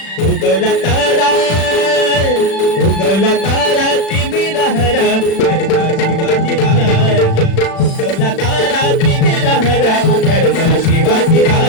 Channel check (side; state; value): right; late; 36 ms